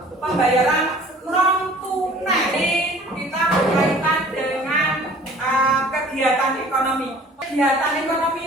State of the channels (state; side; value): normal; both; correlation 0.50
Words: pembayaran non kegiatan ekonomi